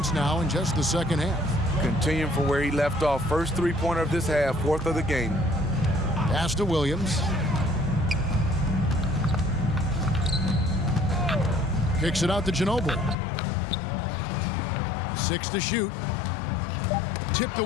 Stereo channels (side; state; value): right; drops out; at 13.2 s